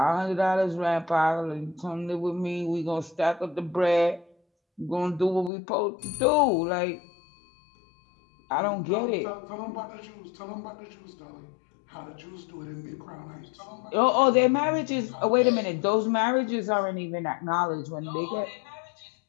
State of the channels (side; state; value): right; drops out; at 5.5 s